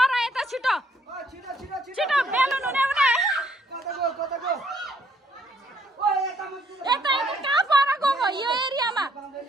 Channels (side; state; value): both; normal; correlation 0.68